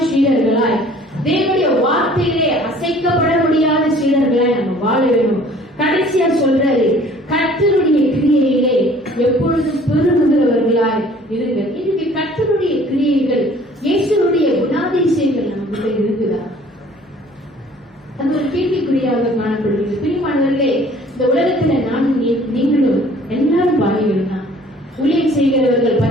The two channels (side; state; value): both; normal; correlation 0.53